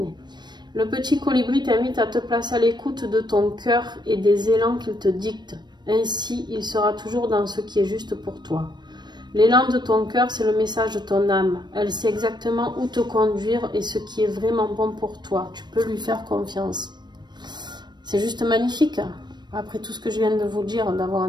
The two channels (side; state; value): left; late; 0.21 ms